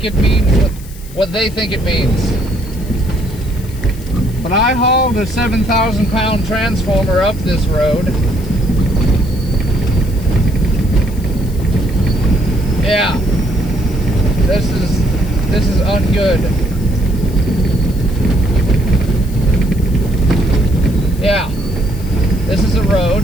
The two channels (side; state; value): left; noise; hiss, 20 dB below the sound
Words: it means what they think it means. But I hauled a 7,000-pound transformer up this road. Yeah, this is ungood. Yeah, this is a